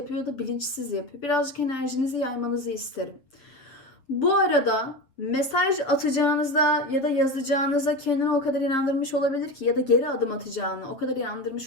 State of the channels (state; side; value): late; right; 7.6 ms